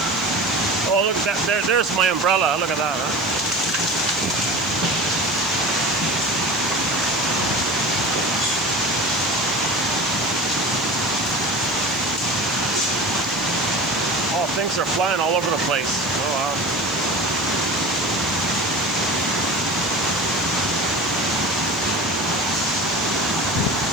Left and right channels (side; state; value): right; noise; hiss, 22 dB below the sound